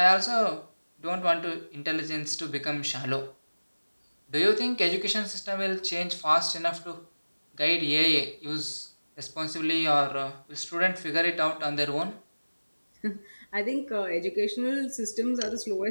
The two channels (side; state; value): both; inverted; correlation -1.00